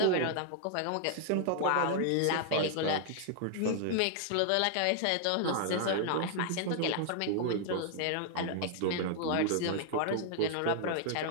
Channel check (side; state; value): both; different; correlation 0.00